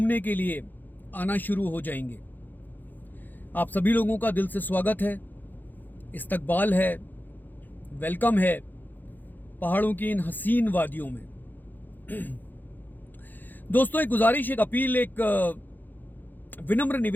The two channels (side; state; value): right; late; 0.087 ms